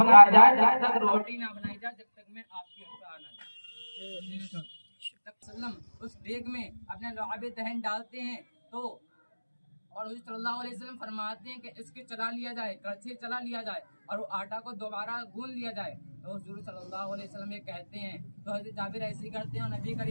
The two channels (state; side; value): inverted; both; correlation -1.00